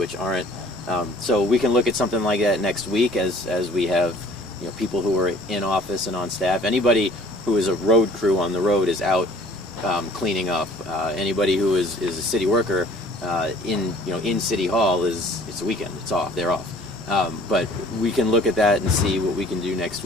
aren't. So we can look at something like that next week as we have, you know, people who are in office and on staff. Anybody who is a road crew on the road is out cleaning up. Anybody who is a city worker in City Hall it's a weekend. It's off. They're off. But we can look at that and see what we can do next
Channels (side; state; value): both; normal; correlation 0.53